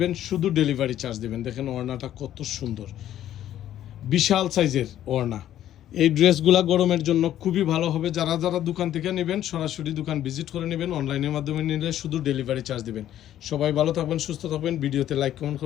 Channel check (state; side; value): quieter; right; 11.9 dB